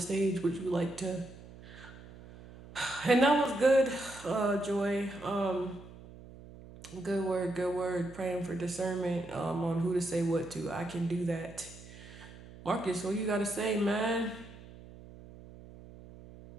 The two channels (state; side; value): noise; right; hum, 18 dB below the sound